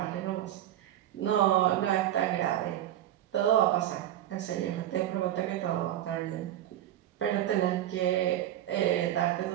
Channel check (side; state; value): left; quieter; 12.4 dB